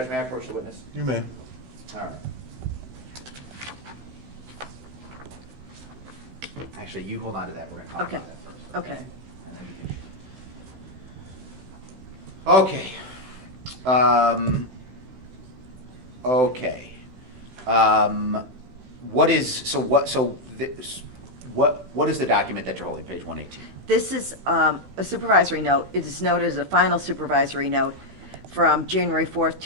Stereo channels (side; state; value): left; late; 16 ms